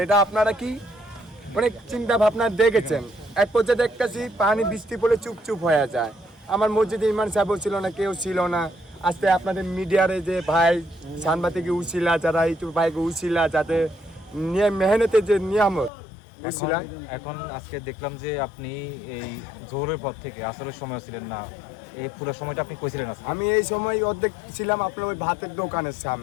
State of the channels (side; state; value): right; drops out; at 15.9 s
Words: এটা আপনারা কি অনেক চিন্তা ভাবনা দেখেছেন। এক পর্যায়ে দেখতেছি পানি বৃষ্টি পড়লে চুপচুপ হয়ে যায়। আমার মসজিদে ইমাম সাহেবও ছিল না, কেউ ছিল না। আজকে আপনাদের মিডিয়ারে যে ভাই সাংবাদিক উছিলা, যারা ইউটিউব ভাইকে উছিলা, যাতে মেহনতের যে নিয়ামত উছিলা। এখন আজকে দেখলাম যে আপনি এই জোহরের পর থেকে আসরের সময় ছিলেন না, এই পুরো সময়টা আপনি কইছিলেন? আমি এই সময় অর্ধেক ছিলাম আপনার ওই ভাতের দোকানের